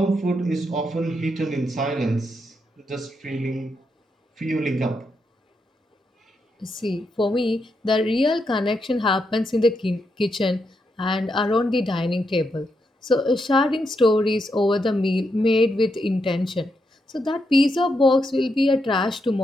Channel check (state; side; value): normal; both; correlation 0.82